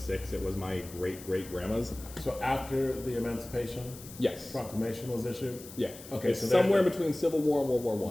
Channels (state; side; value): noise; left; hiss, 16 dB below the sound